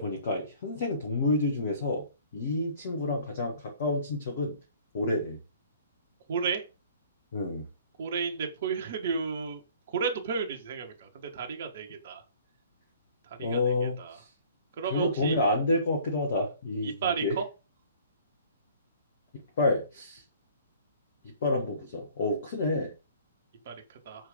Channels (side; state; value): both; inverted; correlation -0.52